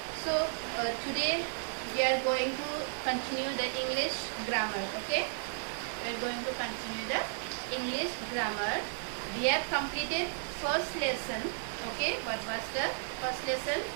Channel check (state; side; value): silent; left; digital silence